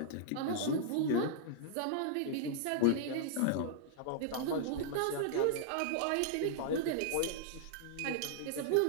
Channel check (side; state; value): both; different; correlation -0.01